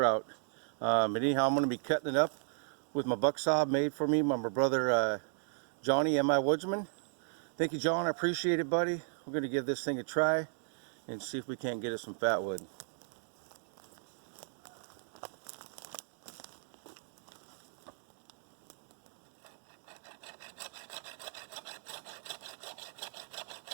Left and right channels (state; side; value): silent; left; digital silence